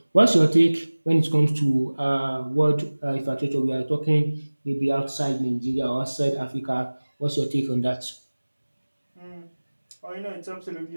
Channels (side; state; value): both; inverted; correlation -1.00